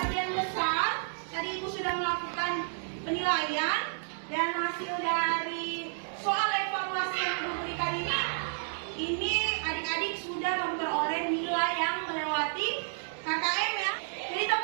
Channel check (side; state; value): left; silent; 57 dB below the other